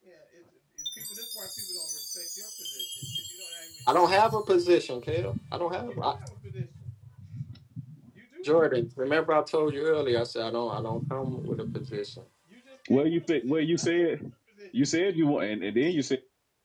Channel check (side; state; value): both; identical; correlation 1.00